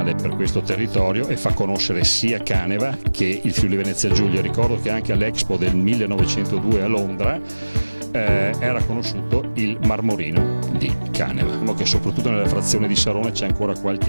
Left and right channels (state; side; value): inverted; both; correlation -1.00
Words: per questo territorio e fa conoscere sia Caneva che il Friuli Venezia Giulia. Ricordo che anche all'Expo del 1902 a Londra era conosciuto il marmorino di Caneva. Diciamo che soprattutto nella frazione di Sarone c'è ancora qualche